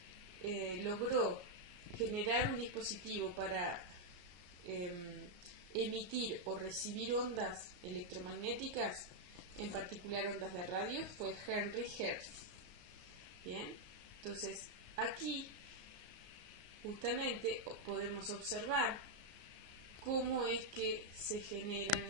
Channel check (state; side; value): late; left; 34 ms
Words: logró generar un dispositivo para emitir o recibir ondas electromagnéticas, en particular ondas de radio, fue Henry Hertz. Bien, entonces aquí justamente podemos observar cómo es que se generan